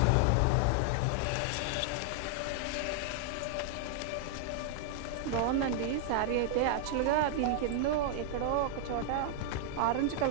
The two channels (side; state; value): both; different; correlation 0.00